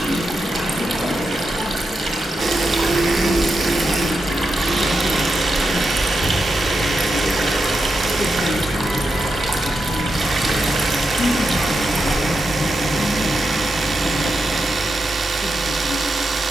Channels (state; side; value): normal; both; correlation 0.86